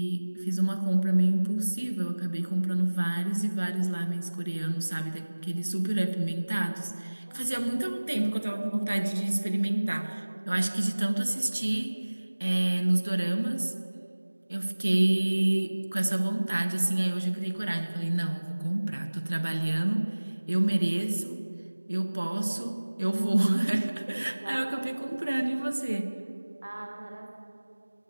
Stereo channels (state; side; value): inverted; both; correlation -1.00